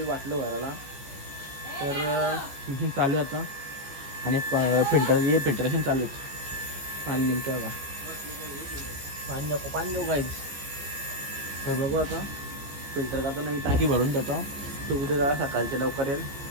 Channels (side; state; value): left; late; 14 ms